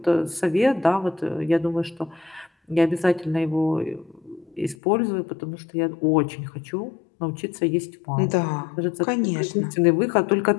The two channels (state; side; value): drops out; right; at 4.8 s